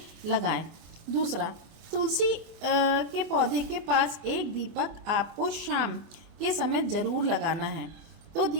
लगाएं। दूसरा, तुलसी के पौधे के पास एक दीपक आपको शाम के समय जरूर लगाना है। तो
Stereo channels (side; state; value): left; late; 24 ms